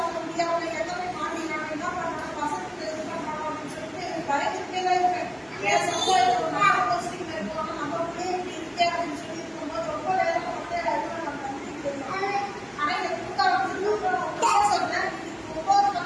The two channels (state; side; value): identical; both; correlation 1.00